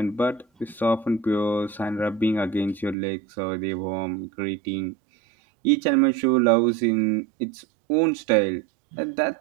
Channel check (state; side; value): drops out; left; at 3.0 s